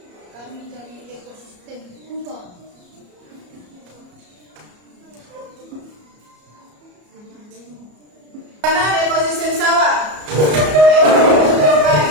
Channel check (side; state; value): left; late; 34 ms